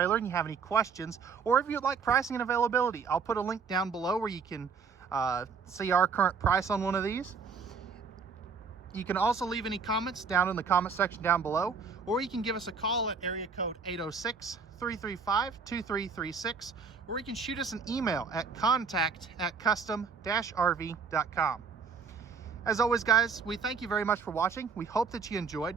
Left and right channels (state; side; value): quieter; left; 5.5 dB